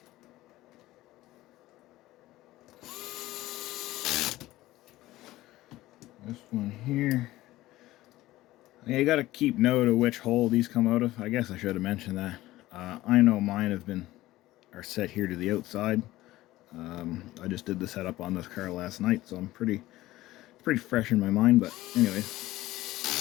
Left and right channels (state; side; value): quieter; right; 16.8 dB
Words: This one here. Yeah, you got to keep note of which hole these come out of. I guess I should have mentioned that. I know mine are set here to the outside. I just did the setup on this car last night, so I'm pretty fresh in my mind. But anyway,